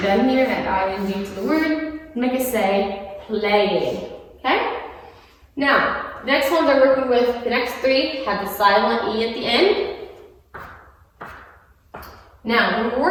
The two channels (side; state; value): both; identical; correlation 1.00